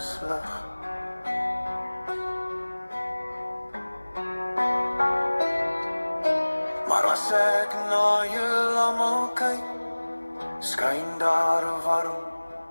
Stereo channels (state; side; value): inverted; both; correlation -1.00